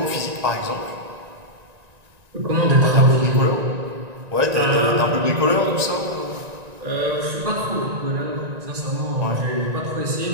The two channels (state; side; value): late; left; 1.9 ms